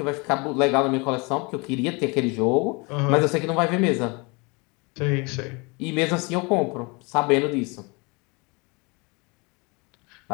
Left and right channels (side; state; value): right; quieter; 28.9 dB